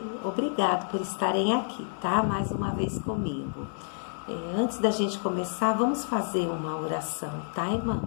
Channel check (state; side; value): silent; right; digital silence